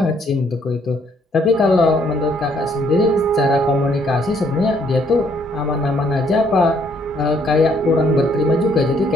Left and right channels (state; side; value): normal; both; correlation 0.67